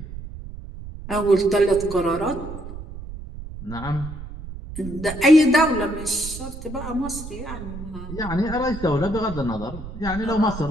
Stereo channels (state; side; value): noise; right; rumble, 11 dB below the sound